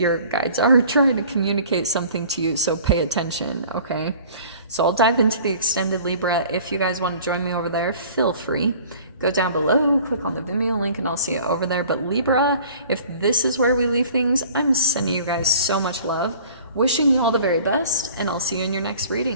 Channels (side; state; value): both; inverted; correlation -0.48